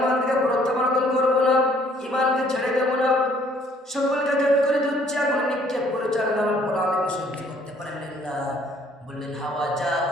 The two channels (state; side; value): normal; both; correlation 0.61